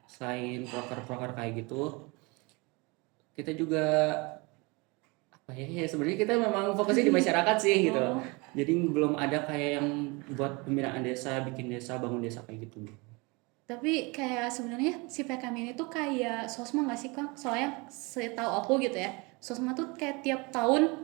selain proker-proker kayak gitu, kita juga apa ya, sebenarnya kita memang fokusnya di masyarakat sih gitu. Jadi belum ada kayak yang buat pembinaan desa, bikin desa, bangun desa kayak gitu. Tapi kayak sebenarnya si PKM ini tuh kayak Sosma nggak sih Kang? Soalnya setahu aku gitu ya, Sosma tuh kayak tiap tahun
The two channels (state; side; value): quieter; left; 27.2 dB